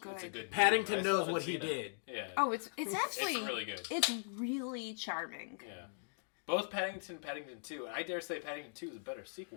It's a good Paddington movie. knows what he did. Yeah. Oh, it's actually It's really good. It's really charming. Yeah. Both Paddington, Paddington 2, and I dare say Paddington 2 is a better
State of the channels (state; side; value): silent; right; digital silence